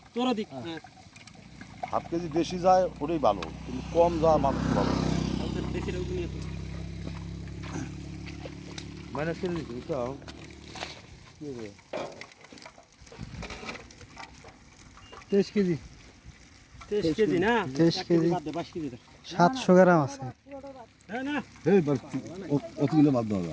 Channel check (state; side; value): identical; both; correlation 1.00